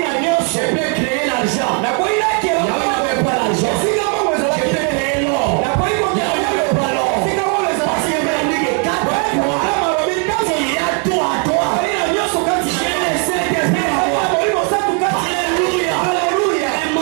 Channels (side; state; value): left; quieter; 39.4 dB